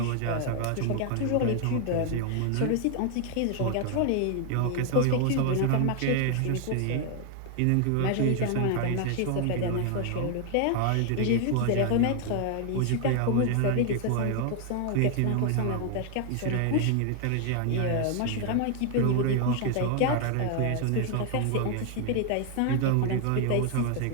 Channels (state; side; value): different; both; correlation 0.00